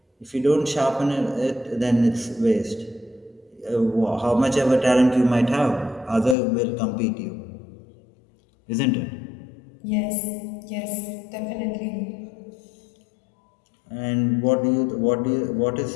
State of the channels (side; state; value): right; drops out; at 6.4 s